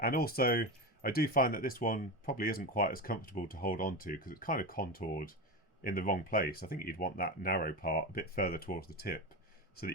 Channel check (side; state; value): both; normal; correlation 0.21